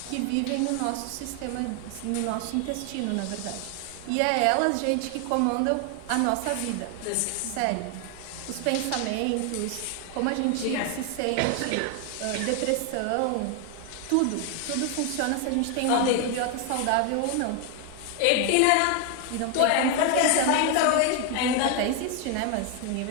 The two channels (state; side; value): different; both; correlation 0.01